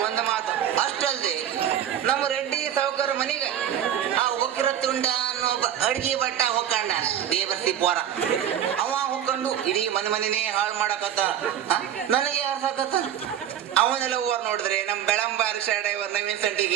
ಒಂದು ಮಾತು ಅಷ್ಟಲ್ದೆ, ನಮ್ಮ ರೆಡ್ಡಿ ಸಾವುಕಾರ ಮನಿಗೆ ಆ ಒಕ್ಕಿರ ತುಂಡ ಅನ್ನೋ ಅಡ್ಗಿ ಬಟ್ಟ ಹೊಕ್ಕಂಡ ದೇವರ್ಸಿ ಪೋರ. ಅವ ಹೊಕ್ಕೊಂಡು ಇಡೀ ಮನೆನೇ ಹಾಳು ಮಾಡಕತ್ತ. ನನಗೆ ಯಾರು ಸಾಕತ್ತ? ಅವನೆಲ್ಲ ಓರ್ ನೋಡಿದ್ರೆ ನಮ್ ಬೆಳಂಬಾರಿ ಡ್ರೈವರ್ ನವೀನ್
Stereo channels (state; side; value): quieter; left; 10.1 dB